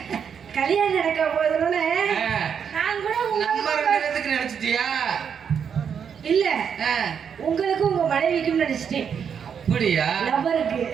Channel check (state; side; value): quieter; left; 7.4 dB